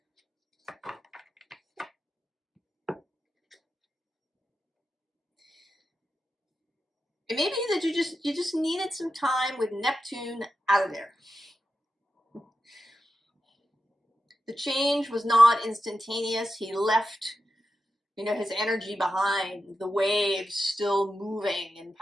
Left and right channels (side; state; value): both; normal; correlation 0.90